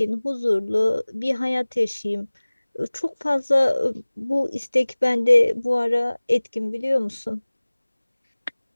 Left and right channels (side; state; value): both; inverted; correlation -1.00